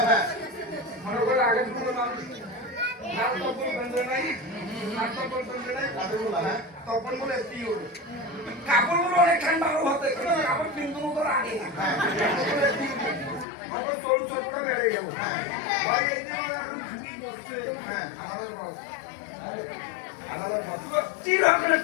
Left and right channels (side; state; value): right; drops out; at 13.5 s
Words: হ্যাঁ মনে করে আগে কোনো মানুষ নাম তপন বন্ধ নাই নাম তপন বন্ধ নাই তপন বলে কি হলো কাপড়গুলো অনেক ঠান্ডা হতে কাপড় কিন্তু তোর আগে না আমার চোল চোপড়া বেড়ে গেল ভাই এই যে এখন ছুটি করছে হ্যাঁ আমাদের বস আমাদের বস কি হবে না